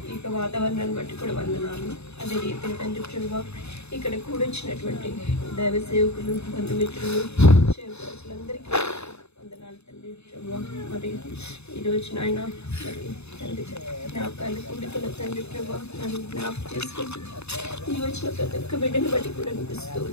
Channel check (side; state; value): right; late; 0.80 ms